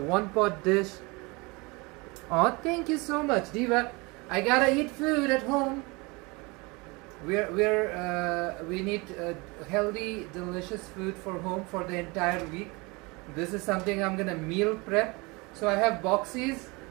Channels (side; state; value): left; quieter; 26.3 dB